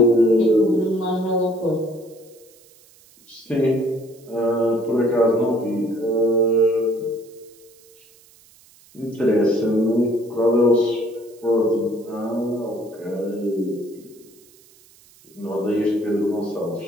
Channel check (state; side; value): noise; right; hiss, 28 dB below the sound